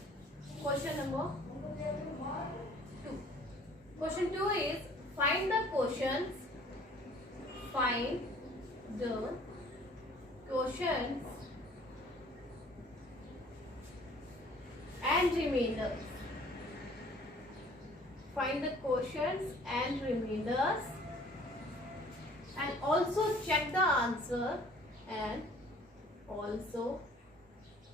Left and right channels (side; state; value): both; normal; correlation 0.54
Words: Question number 2. Question 2 is find the quotients. Find the quotients and remainders. Find the quotients and remainders and also check the answer and also